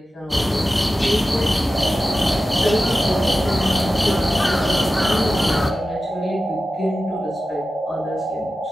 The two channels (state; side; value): normal; both; correlation 0.93